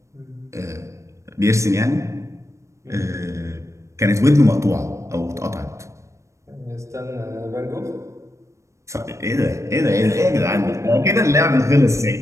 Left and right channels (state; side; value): late; left; 0.15 ms